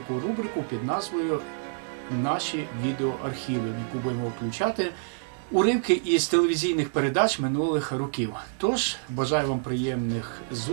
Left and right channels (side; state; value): left; silent; digital silence